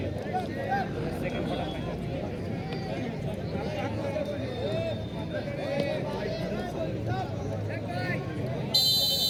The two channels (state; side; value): identical; both; correlation 1.00